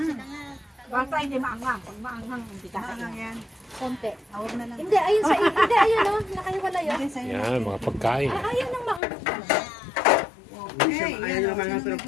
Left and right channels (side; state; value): right; drops out; at 9.0 s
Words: Basta hindi maanghang. Pag maanghang, hindi ka yan. Konti. Awag na lang. Hindi, ayun sa hindi, ayun o. Nakahiwala yun. Yan, mga pagkain. Ayun ang maanghang pala. Ayaw yung mga pero